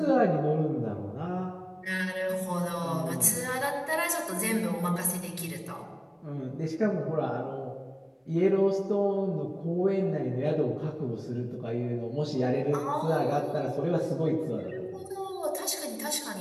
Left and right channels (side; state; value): both; identical; correlation 1.00